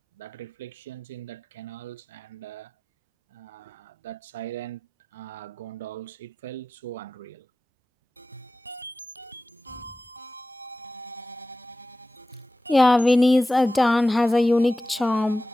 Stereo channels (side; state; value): both; normal; correlation 0.95